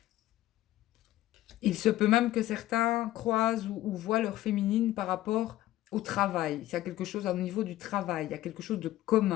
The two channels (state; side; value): quieter; right; 15.1 dB